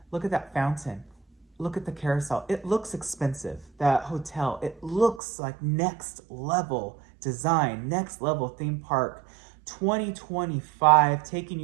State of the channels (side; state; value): left; drops out; at 5.2 s